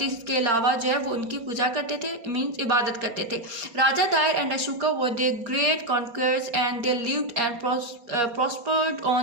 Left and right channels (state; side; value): late; left; 4.3 ms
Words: के अलावा जो है वो उनकी पूजा करते थे, मीन्स इबादत करते थे. Raja Dahir and Ashoka were the great conquerors and they lived and prospered